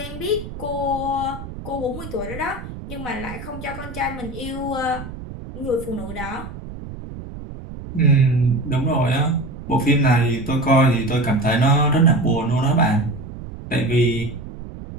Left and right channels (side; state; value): right; noise; rumble, 12 dB below the sound